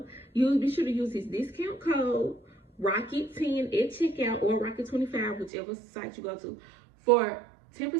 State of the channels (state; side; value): drops out; left; at 5.5 s